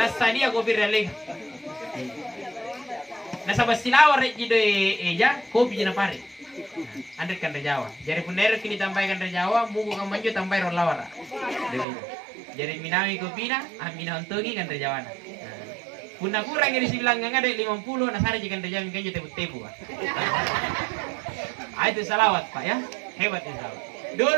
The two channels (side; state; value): left; drops out; at 11.9 s